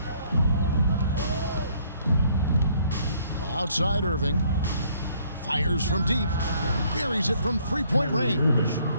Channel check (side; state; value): both; inverted; correlation -0.64